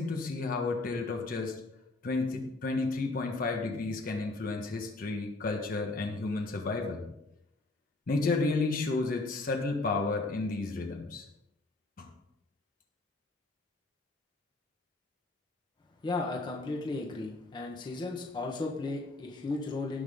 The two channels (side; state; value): right; quieter; 3.0 dB